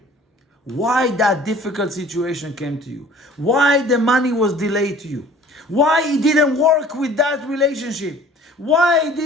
why that difficult situation came to you, why the money was delayed to you, why it didn't work with that relationship, why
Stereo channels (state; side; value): normal; both; correlation 0.49